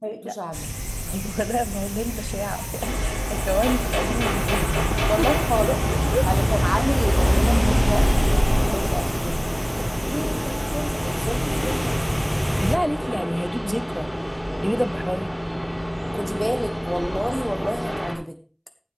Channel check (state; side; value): identical; both; correlation 1.00